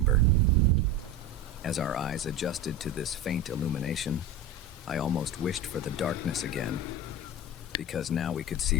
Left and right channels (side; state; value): both; normal; correlation 0.25